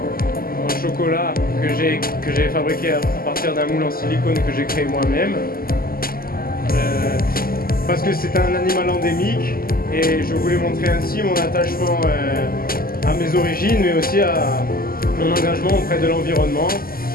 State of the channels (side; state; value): right; late; 0.42 ms